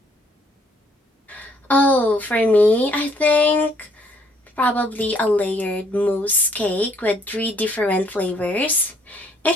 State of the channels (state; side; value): normal; both; correlation 0.66